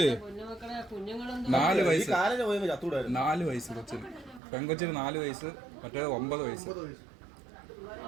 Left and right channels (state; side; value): drops out; left; at 4.4 s